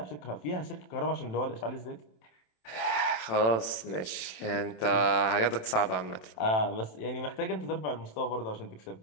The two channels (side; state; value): right; late; 27 ms